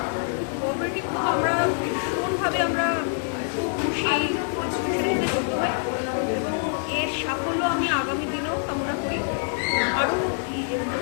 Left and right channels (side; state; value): right; silent; 61 dB below the other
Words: কোঅপারেটিভ। আমরা ভীষণভাবে আমরা খুব খুশি এই ইনস্টিটিউশনের যুক্ত হই এবং এর সাফল্য আমি আগামী দিনেও কামনা করি, আরও